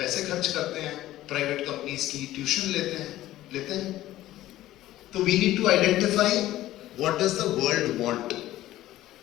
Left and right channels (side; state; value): right; quieter; 14.9 dB